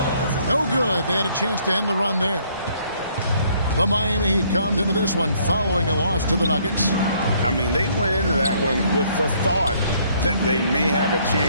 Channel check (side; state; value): both; inverted; correlation -0.64